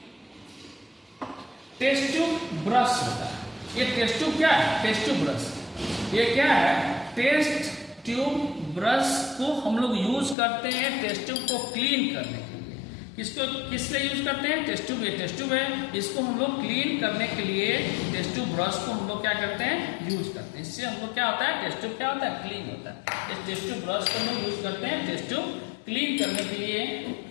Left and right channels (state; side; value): drops out; right; at 10.4 s